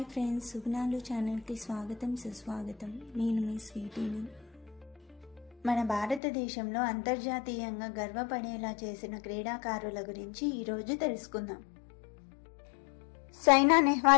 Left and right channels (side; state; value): right; drops out; at 6.2 s